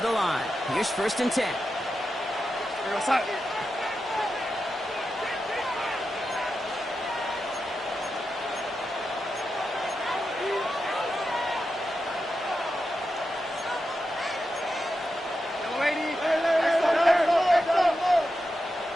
the line. Here's first and 10.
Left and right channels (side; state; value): both; normal; correlation 0.89